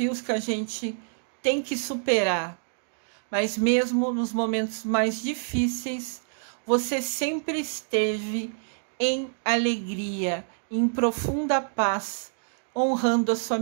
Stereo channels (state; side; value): silent; left; digital silence